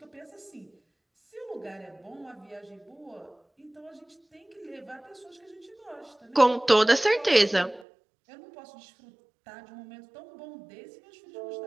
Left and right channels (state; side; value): drops out; left; at 7.9 s